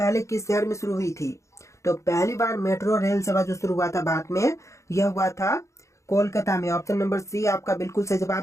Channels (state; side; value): late; right; 0.14 ms